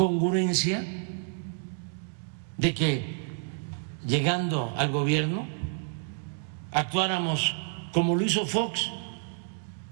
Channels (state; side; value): silent; left; 59 dB below the other